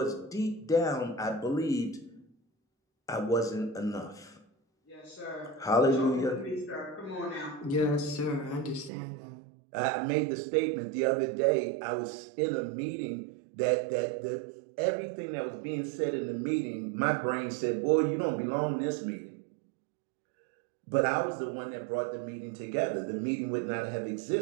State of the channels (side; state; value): left; drops out; at 8.9 s